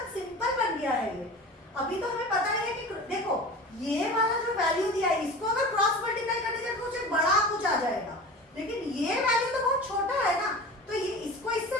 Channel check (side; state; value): both; normal; correlation 0.36